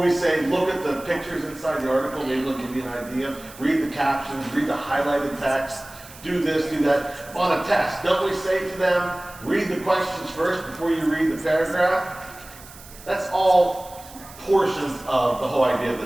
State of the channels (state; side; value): noise; right; hiss, 19 dB below the sound